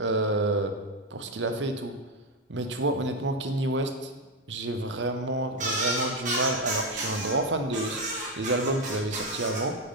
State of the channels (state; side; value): normal; both; correlation 0.08